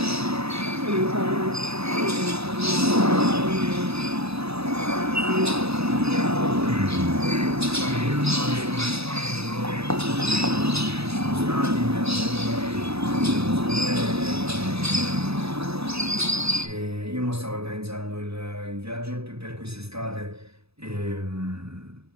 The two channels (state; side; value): late; left; 0.78 ms